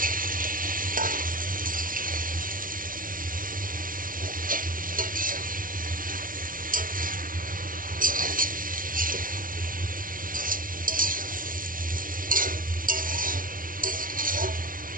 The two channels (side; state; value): left; late; 0.40 ms